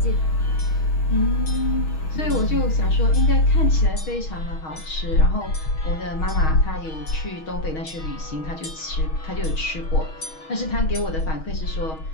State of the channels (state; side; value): late; right; 6.3 ms